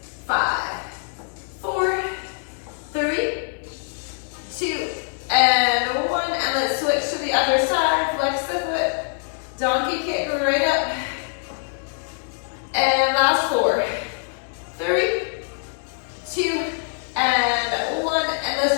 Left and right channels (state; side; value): silent; right; 60 dB below the other